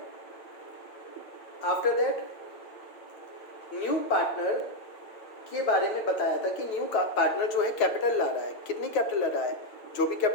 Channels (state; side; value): late; right; 8.9 ms